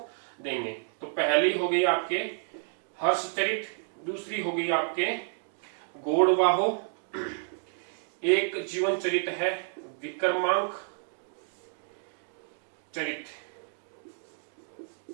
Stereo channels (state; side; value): silent; left; digital silence